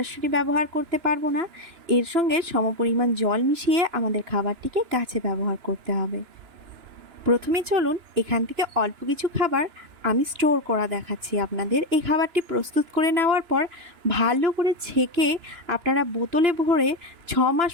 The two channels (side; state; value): left; late; 2.9 ms